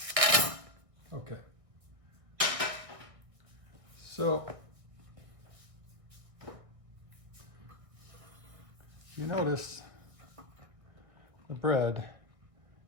Okay. So, you notice the bread,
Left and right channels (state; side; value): late; left; 1.6 ms